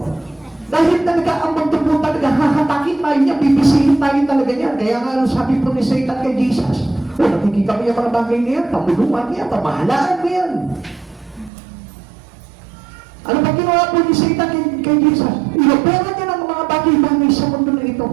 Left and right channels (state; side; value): drops out; left; at 11.5 s